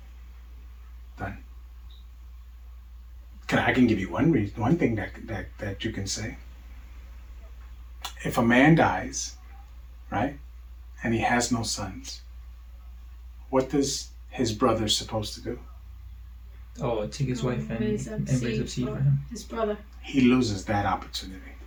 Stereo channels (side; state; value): both; identical; correlation 1.00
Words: done? I can give you one thing that you can say. If a man dies, right, and he has no sons, what does his brother supposed to do? Oh, take his wife and raise up seed for him. His brother. He loses that opportunity.